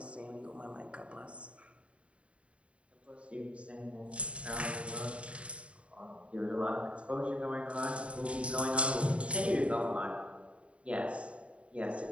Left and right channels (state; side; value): late; left; 0.062 ms